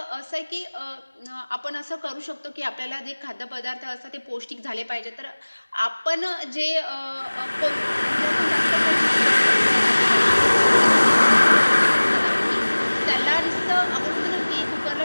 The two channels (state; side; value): inverted; both; correlation -1.00